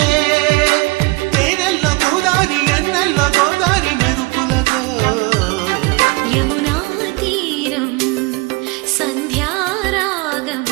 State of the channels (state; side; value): quieter; left; 25.0 dB